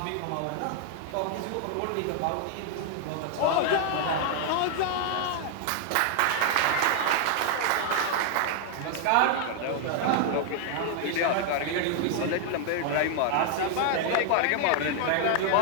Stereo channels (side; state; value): both; different; correlation 0.00